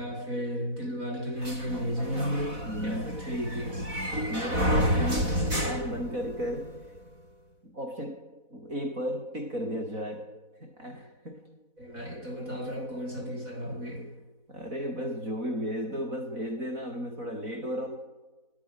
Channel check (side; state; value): left; late; 4.1 ms